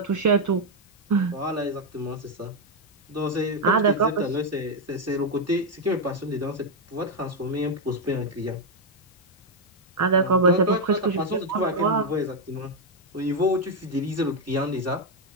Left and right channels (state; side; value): normal; both; correlation 0.02